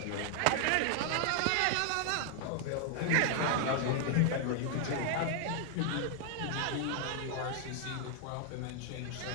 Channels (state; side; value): different; both; correlation 0.00